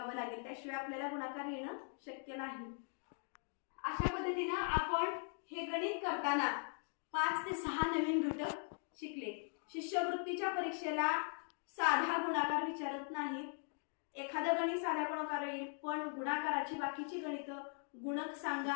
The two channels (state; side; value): silent; right; 51 dB below the other